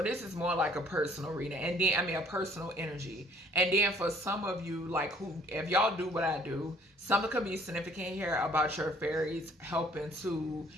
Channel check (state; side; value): normal; both; correlation 0.58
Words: this is more like a personal reading. And then, I mean, a personal energy. And then for some of you, like who, if y'all do what I do, something could be significant here about your fairies helping